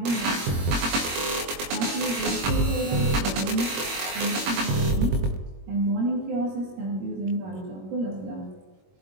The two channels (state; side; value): late; left; 21 ms